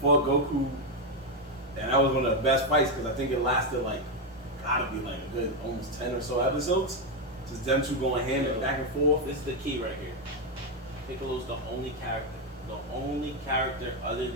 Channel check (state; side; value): normal; both; correlation 0.06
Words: Goku, and that was one of the best fights because I think it lasted gotta be a good almost 10 or so episodes. Just them two going hand back and forth. This is the key right here. Piccolo's the only character other